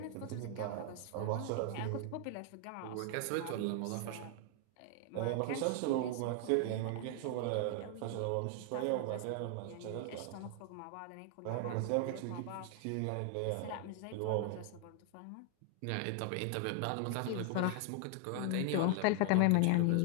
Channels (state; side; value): different; both; correlation 0.00